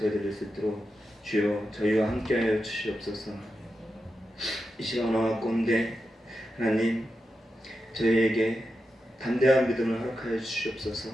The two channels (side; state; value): both; normal; correlation 0.89